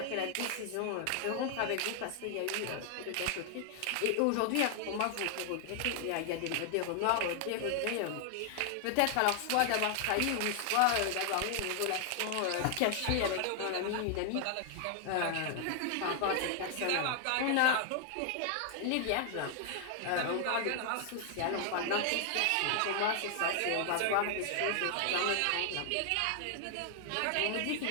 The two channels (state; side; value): different; both; correlation 0.00